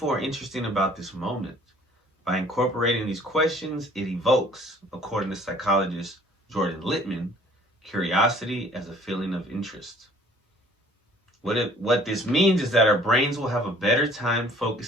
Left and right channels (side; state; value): both; normal; correlation 0.55